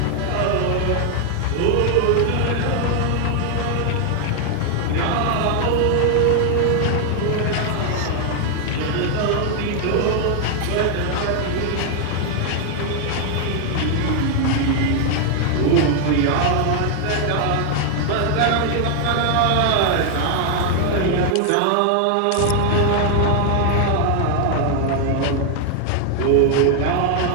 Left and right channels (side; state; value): both; different; correlation 0.00